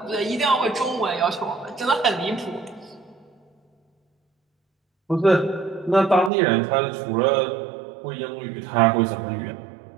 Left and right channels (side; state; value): left; drops out; at 6.3 s